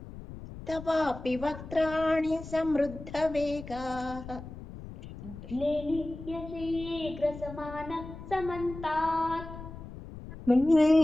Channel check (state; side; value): noise; left; rumble, 13 dB below the sound